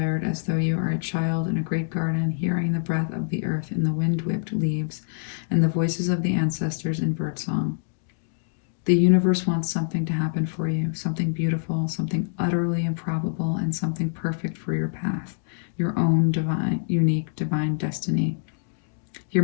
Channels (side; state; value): right; silent; digital silence